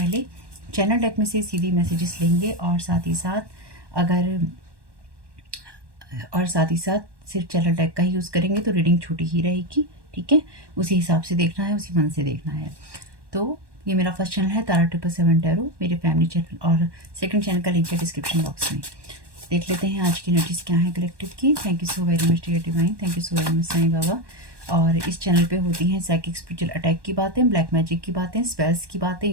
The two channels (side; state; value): left; late; 1.2 ms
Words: चैनल डेक में से सीधी मैसेजेस लेंगे और साथ ही साथ सिर्फ चैनल डेक का ही यूज़ करेंगे तो रीडिंग छोटी ही रहेगी। ठीक है, उसी हिसाब से देखना है, उसी मन से देखना है। तो ये मेरा फर्स्ट चैनल है तारा 777 टैरो, मेरे फैमिली चैनल, और सेकंड चैनल का लिंक है डिस्क्रिप्शन बॉक्स में। देख लेते हैं आज की एनर्जीज क्या है कलेक्टिव की। Thank you so very much dear divine, thank you so very much Sai Baba. और इस चैनल पे होती हैं साइकिक स्पिरिचुअल अटैक की बातें, ब्लैक मैजिक की बातें, स्पेल्स की बातें